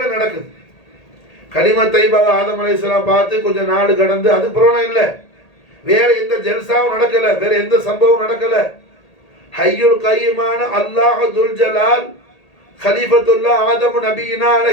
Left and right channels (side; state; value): right; late; 1.8 ms